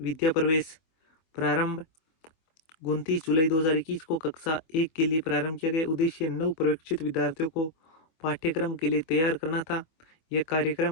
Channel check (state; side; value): late; right; 24 ms